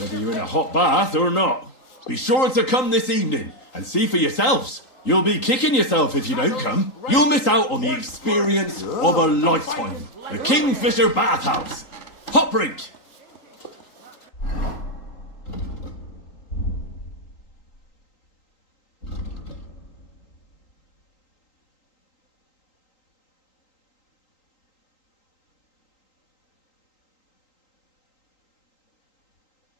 you're in a hot bath or not. Be sure to come this evening and see for yourselves. You'll be kicking yourself if you don't come. You'll miss out on the experience of a lifetime. The Kingfisher Bathhouse. Hot Brink.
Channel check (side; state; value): right; late; 3.8 ms